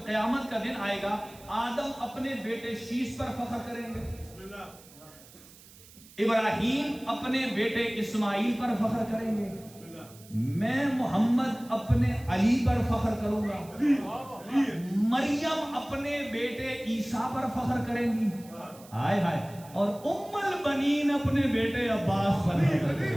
قیامت کا دن آئے گا آدم اپنے بیٹے شیس پر فخر کریں گے، ابراہیم اپنے بیٹے اسماعیل پر فخر کریں گے، میں محمد اپنے علی پر فخر کروں گا، مریم اپنے بیٹے عیسیٰ پر فخر کریں گی، ہائے ہائے، اور ام البنین اپنے بیٹے عباس پر فخر کریں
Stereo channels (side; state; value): right; noise; hiss, 22 dB below the sound